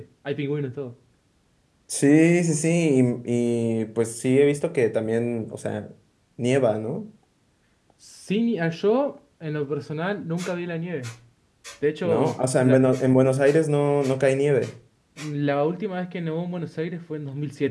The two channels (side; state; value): both; identical; correlation 1.00